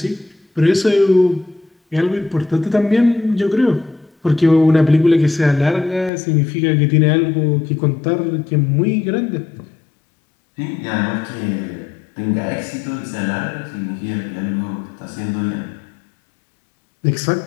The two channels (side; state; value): right; drops out; at 6.1 s